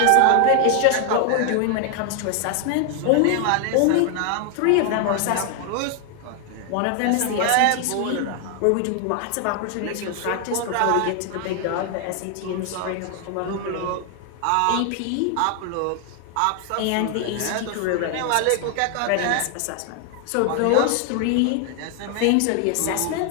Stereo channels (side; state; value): both; different; correlation 0.00